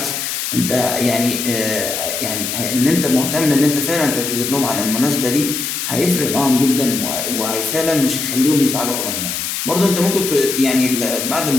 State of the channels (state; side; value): noise; left; hiss, 3 dB below the sound